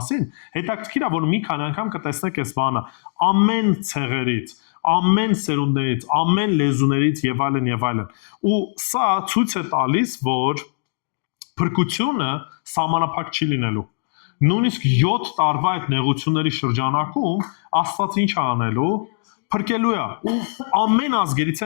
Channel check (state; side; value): silent; right; digital silence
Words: հետաքրքիր է, որ մի քանի անգամ կտեսնեք այս բանը, ամեն ցեղերից, ամեն սերունդներից, ամեն լեզուներից եւ այլն եւ այլն։ Ու սա ցույց է տալիս, որ փրկությունը սահմանափակ չի լինելու։ Նույնիսկ 7 տարվա այդ նեղությունների շրջանակում Աստված ինչ է անելու, փրկելու է ու ամեն ազգերից